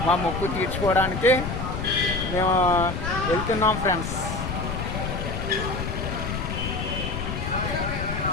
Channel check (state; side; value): noise; left; rumble, 4 dB below the sound